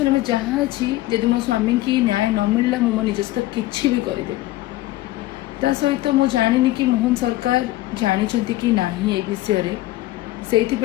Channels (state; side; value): quieter; right; 16.9 dB